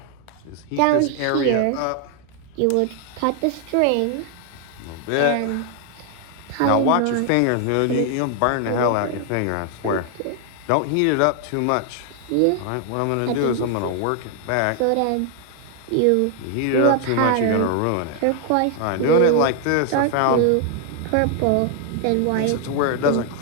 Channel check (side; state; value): both; different; correlation 0.00